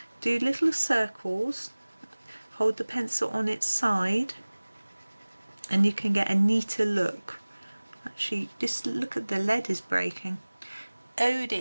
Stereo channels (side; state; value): both; inverted; correlation -1.00